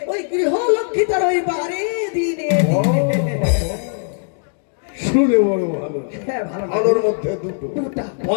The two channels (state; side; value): silent; right; digital silence